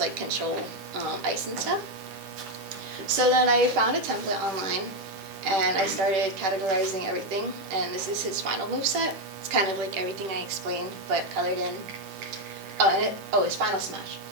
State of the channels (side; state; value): left; late; 10 ms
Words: like, control ice and stuff. So then I found a template online, and I started categorizing everything, and this is his final moveset. It's kind of like everything I explained, but colored in. His final smash.